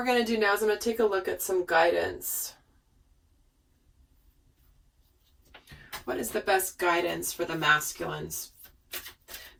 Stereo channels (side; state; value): both; identical; correlation 1.00